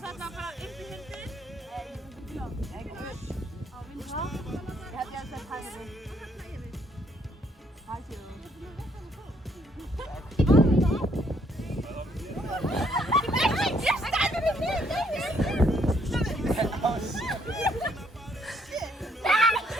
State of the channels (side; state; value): both; normal; correlation 0.68